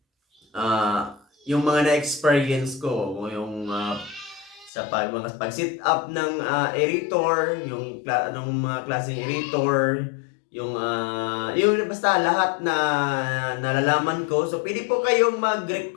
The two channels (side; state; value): right; drops out; at 4.7 s